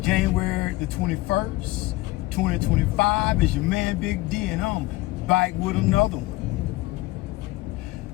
January the 21st, 2025. It's your man Big D, and I'm back with another one.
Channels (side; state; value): right; quieter; 19.3 dB